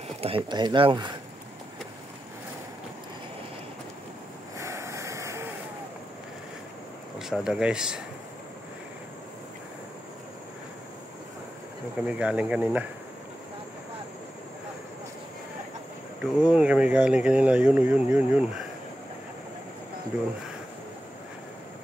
Tahi-tahi lang. Pasada guys. Doon kami galing kanina. Doon kami galing kanina. Yun. Doon.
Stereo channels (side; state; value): both; normal; correlation 0.90